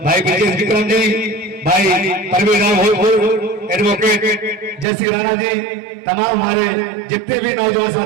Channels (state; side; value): drops out; left; at 4.9 s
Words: भाई ब्रजेश विक्रम जी, भाई परवीन राव एडवोकेट जयश्री राणा जी, तमाम हमारे जितने भी नौजवान